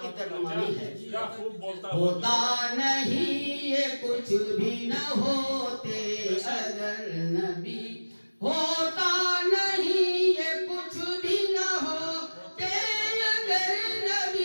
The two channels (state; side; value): inverted; both; correlation -1.00